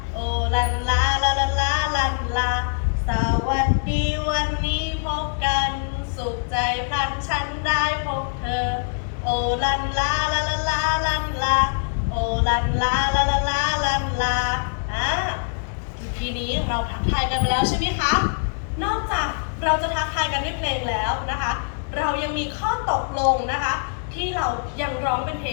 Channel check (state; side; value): silent; right; digital silence